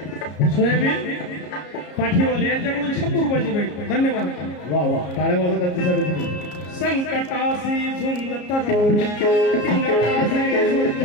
सोयाबीन पाठीवाले यांच्याकडून 100 रुपयाची भेट धन्यवाद वा वा टाळ्या वाजवा त्यांच्यासाठी तुम्ही संकटासी झुंजत राही संकटासी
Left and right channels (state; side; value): late; right; 33 ms